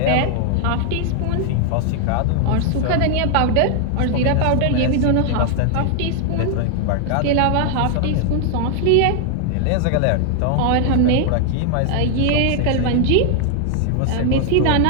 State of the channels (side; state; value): both; different; correlation 0.00